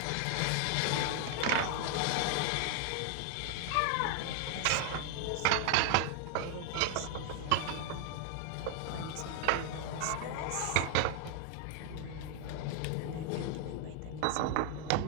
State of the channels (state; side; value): different; both; correlation 0.00